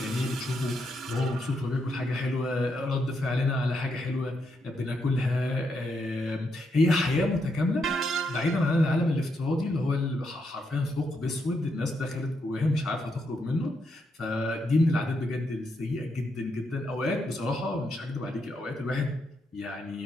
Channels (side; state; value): both; normal; correlation 0.80